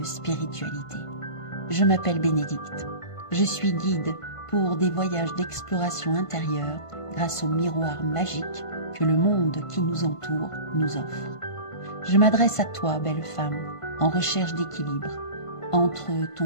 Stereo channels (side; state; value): right; late; 1.5 ms